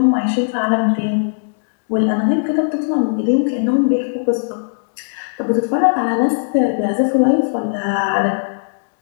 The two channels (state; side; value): silent; right; digital silence